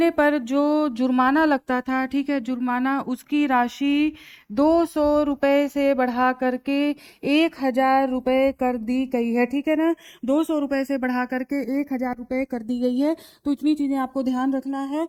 पर जो जुर्माना लगता था, ठीक है, जुर्माना, उसकी राशि 200 रुपए से बढ़ा करके 1000 रुपए कर दी गई है, ठीक है ना। 200 रुपए से बढ़ा करके 1000 रुपए कर दी गई है। तो इतनी चीजें आपको ध्यान रखना है,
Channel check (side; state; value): both; identical; correlation 1.00